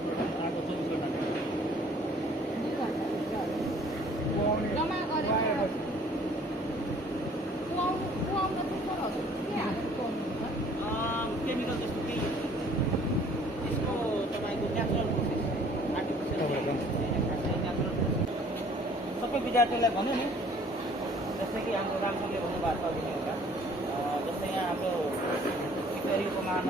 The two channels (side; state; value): both; normal; correlation 0.56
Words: आएको 24 घन्टा 2 घन्टा जम्मा गरेर कुहाउन चाहिँ सरहरू के हालेर कुहाउनुहुन्छ केमिकल जस्तो केही त्यसको तपाईँको नेचुरल प्रोसेस आर्टिफिसियल नेचुरल सबै विद्यार्थीलाई भन्यो नि जस्तै कि हाम्रो रामसरले भन्नुभएको छ अघि एउटा जस्तै यहाँ हाम्रो सिक्किम